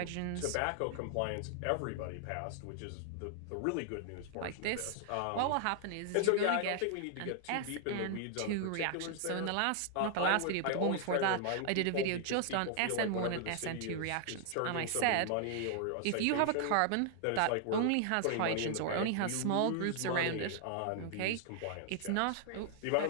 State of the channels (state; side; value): different; both; correlation 0.00